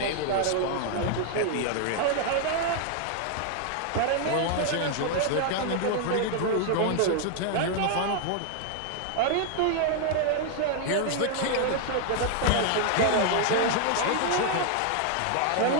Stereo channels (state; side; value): different; both; correlation 0.00